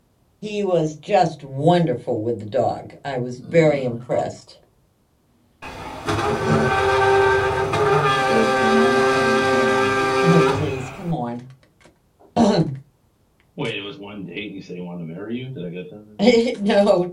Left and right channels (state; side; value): identical; both; correlation 1.00